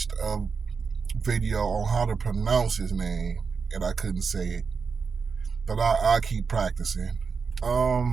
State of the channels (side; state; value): left; quieter; 5.3 dB